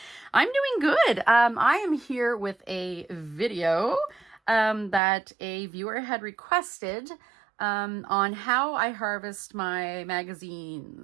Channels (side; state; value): left; drops out; at 5.0 s